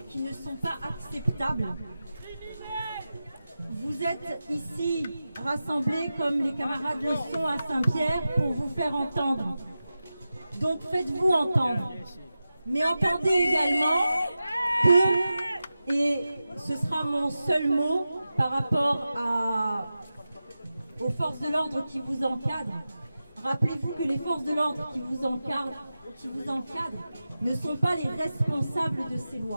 sont pas acceptables. Vous êtes ici rassemblés comme les camarades le sont à Saint-Pierre pour vous faire entendre. Donc faites-vous entendre. Mais entendez également que, et ce sera mon seul mot par rapport aux forces de l'ordre qui vous encadrent, rappelez-vous que les forces de l'ordre qui vous encadrent ne sont pas les responsables de ces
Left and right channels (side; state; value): both; inverted; correlation -0.93